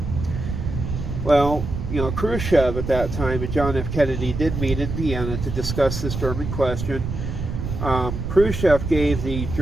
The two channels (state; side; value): noise; right; rumble, 5 dB below the sound